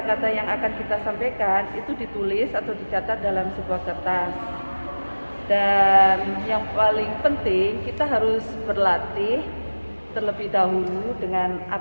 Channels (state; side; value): inverted; both; correlation -1.00